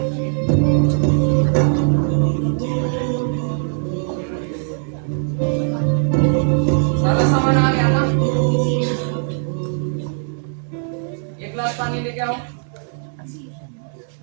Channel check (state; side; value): silent; left; 66 dB below the other